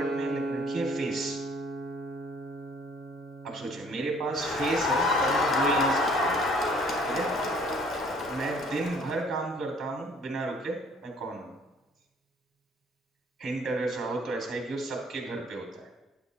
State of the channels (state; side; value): normal; both; correlation 0.58